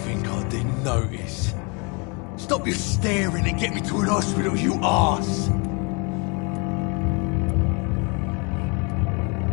I didn't notice? Stop your staring and get me to an hospital, you arse!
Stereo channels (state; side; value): quieter; right; 32.1 dB